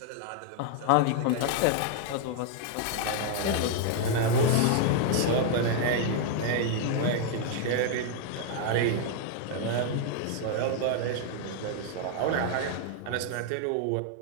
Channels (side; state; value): both; different; correlation 0.00